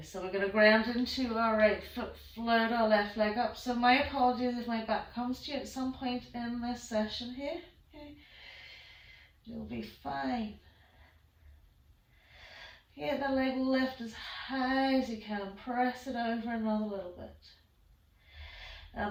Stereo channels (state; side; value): identical; both; correlation 1.00